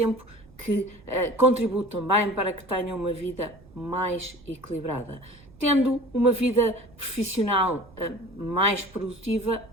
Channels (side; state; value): right; noise; rumble, 25 dB below the sound